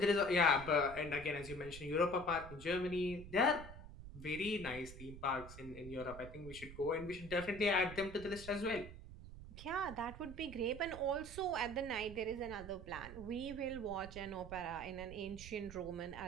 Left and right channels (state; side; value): noise; right; rumble, 13 dB below the sound